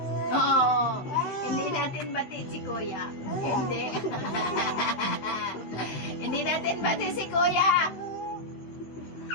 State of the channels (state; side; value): late; right; 16 ms